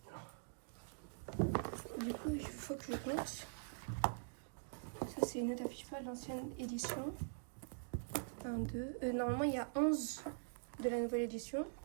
Du coup, il faut que je compte. Ça, c'est une note à FIFA de l'ancienne édition. 1, 2. Normalement, il y a 11 de la nouvelle édition.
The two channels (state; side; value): silent; left; digital silence